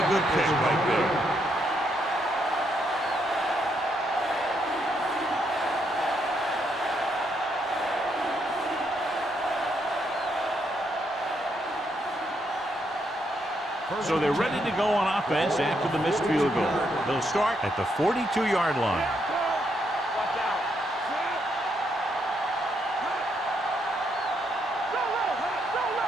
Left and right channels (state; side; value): normal; both; correlation 0.77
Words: good pick right there. So they're ready to go on offense after the missed field goal. They'll start at the 42-yard line. Watch out.